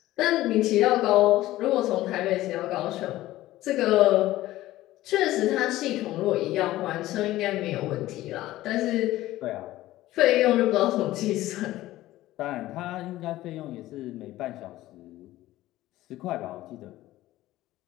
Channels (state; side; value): quieter; right; 15.9 dB